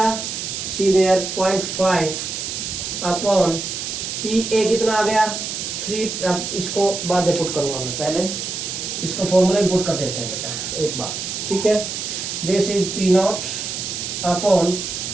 सी देयर 0.5 अपॉन PA कितना आ गया 3. अब इसको बाद में पुट करूंगा मैं, पहले इसको फॉर्मूले में पुट कर देते हैं बेटा एक बार, ठीक है. This is P nought upon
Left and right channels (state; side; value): noise; right; hiss, 5 dB below the sound